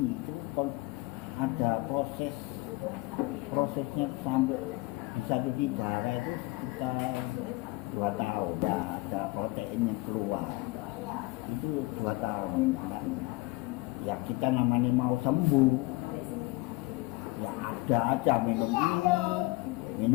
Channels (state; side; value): quieter; right; 20.9 dB